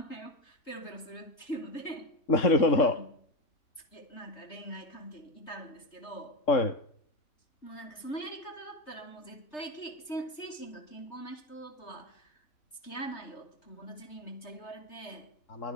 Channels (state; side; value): late; right; 3.3 ms